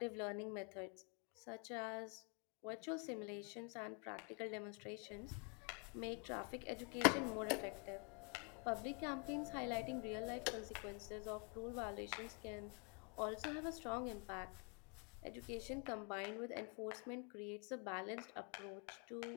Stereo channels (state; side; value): quieter; right; 34.0 dB